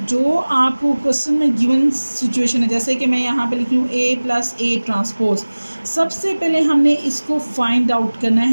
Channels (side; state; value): both; inverted; correlation -1.00